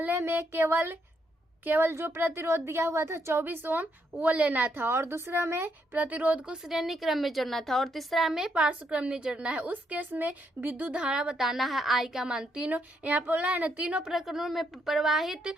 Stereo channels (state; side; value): normal; both; correlation 0.76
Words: में केवल जो प्रतिरोध दिया हुआ था 24 ओम वो लेना था और दूसरा में प्रतिरोध को श्रेणी क्रम में जोड़ना था और तीसरा में पार्श्व क्रम में जोड़ना है। उस केस में विद्युत धारा बताना है I का मान। तीनों यहाँ पर बोला है ना, तीनों प्रकरणों में प्रवाहित